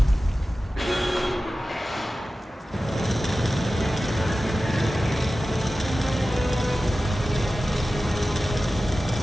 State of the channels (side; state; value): both; normal; correlation 0.95